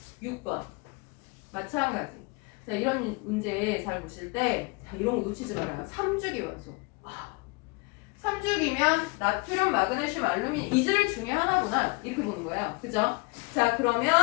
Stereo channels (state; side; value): quieter; right; 28.0 dB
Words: 6번. 마찬가지. 자, 이런 문제 잘 보실 때, 자, 이런 거 놓치지 말아요. 3주기 원소. 3주기면 나트륨, 마그네슘, 알루미늄 이질 중에 하나구나. 이렇게 보는 거예요. 그죠? 자,